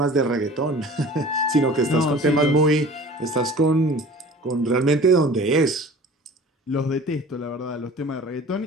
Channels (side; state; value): both; normal; correlation 0.44